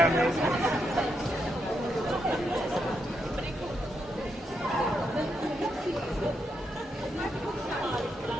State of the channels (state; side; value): normal; both; correlation 0.81